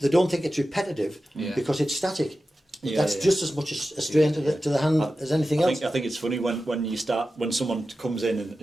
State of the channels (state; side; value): normal; both; correlation 0.93